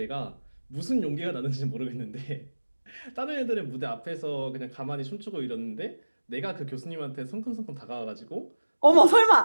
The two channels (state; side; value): inverted; both; correlation -1.00